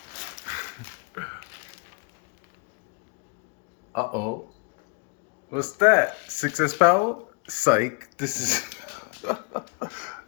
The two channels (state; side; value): quieter; right; 35.7 dB